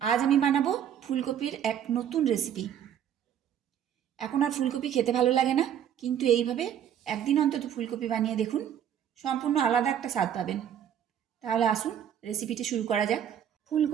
আজ আমি বানাবো ফুলকপির এক নতুন রেসিপি। এখন আর ফুলকপি খেতে ভালো লাগে না, কিন্তু এইভাবে একদিন অন্তত ফুলকপি বানিয়ে দেখুন, সম্পূর্ণ আলাদা একটা স্বাদ পাবেন। তাহলে আসুন রেসিপিটি শুরু করা যাক।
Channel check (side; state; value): left; quieter; 9.5 dB